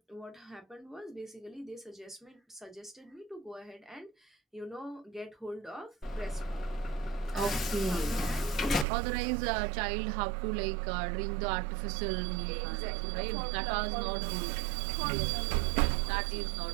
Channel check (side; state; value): left; drops out; at 8.8 s